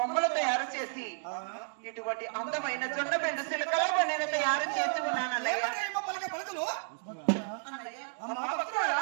తయారు చేసి ఇటువంటి అందమైన జొన్న బెండు చిలకల బండిని తయారు చేసి ఉన్నాను అన్నయ్య.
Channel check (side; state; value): left; silent; digital silence